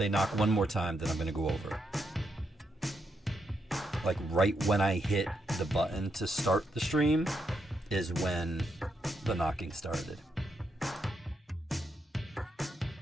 knock one more time, then I'm going to go over. Like, right when I hit the button to start the stream is when the knocking started.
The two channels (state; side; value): normal; both; correlation 0.81